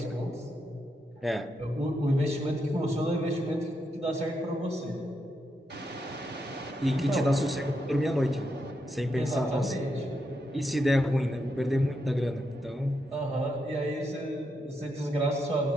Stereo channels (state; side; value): normal; both; correlation 0.82